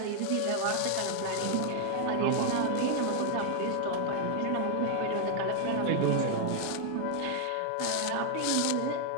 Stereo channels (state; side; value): different; both; correlation 0.00